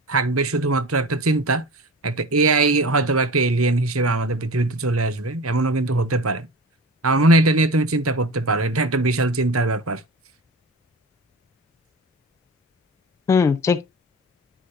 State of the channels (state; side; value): normal; both; correlation 0.34